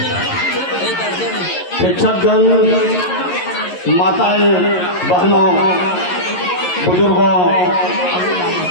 शिक्षकगण, माताएं, बहनों, बुजुर्गों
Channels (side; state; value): right; late; 11 ms